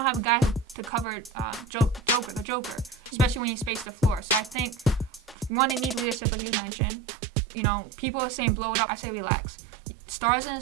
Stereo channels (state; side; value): drops out; left; at 6.2 s